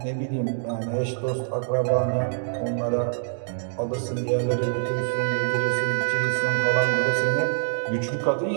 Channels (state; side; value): silent; left; digital silence